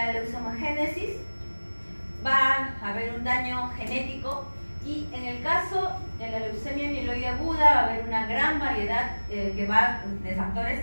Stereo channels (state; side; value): inverted; both; correlation -1.00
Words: leucemogénesis, va a haber un daño genético. Y en el caso de la leucemia mieloide aguda va a haber una gran variedad de factores